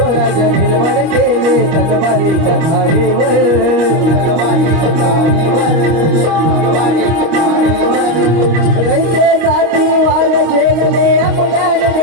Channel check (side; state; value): left; late; 25 ms